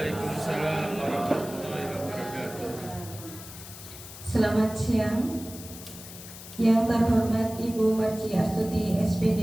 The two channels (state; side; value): noise; left; hiss, 14 dB below the sound